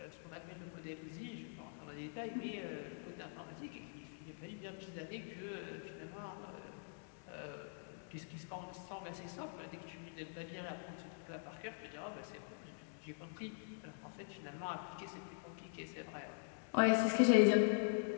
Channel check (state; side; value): silent; right; digital silence